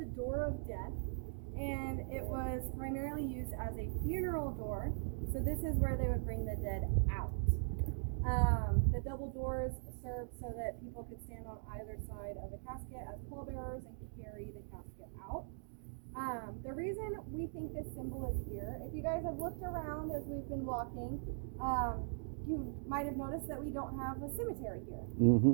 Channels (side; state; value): left; silent; digital silence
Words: Door of Death, and it was primarily used as a funeral door. So this is where they would bring the dead out. The double doors served so that people could stand on either side of the casket as pallbearers and carry the casket out. The reason we think this symbol is here, if you guys have looked around as we've been walking, you might have noticed that we don't have a cemetery here.